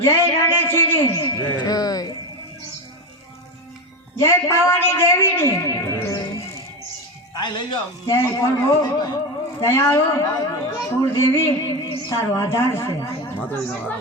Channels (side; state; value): both; normal; correlation 0.18